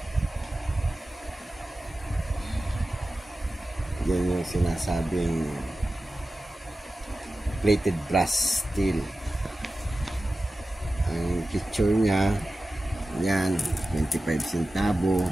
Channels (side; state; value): both; normal; correlation 0.95